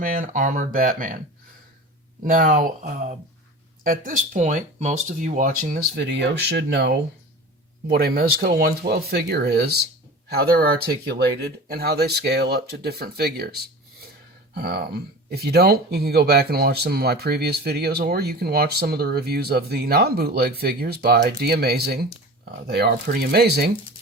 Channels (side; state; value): both; normal; correlation 0.35